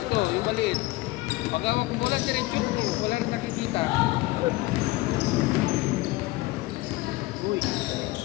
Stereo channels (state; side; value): quieter; right; 20.0 dB